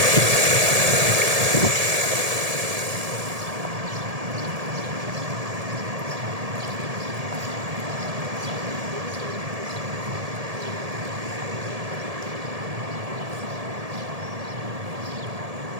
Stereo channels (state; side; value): late; left; 1.7 ms